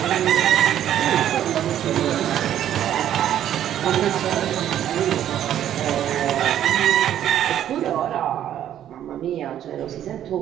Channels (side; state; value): left; quieter; 11.0 dB